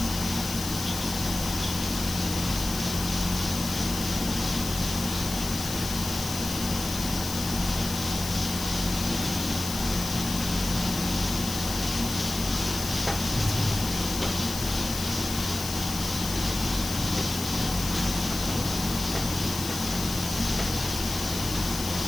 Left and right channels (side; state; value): left; noise; hiss, 6 dB below the sound